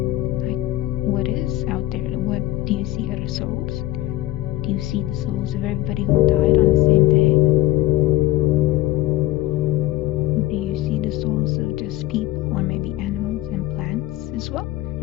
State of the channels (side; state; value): right; quieter; 16.3 dB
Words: Like, what is out there? What do you see? Other souls? Do you see the souls of everybody who died on the same day? Do you see the souls of just people, or maybe animals and plants as well?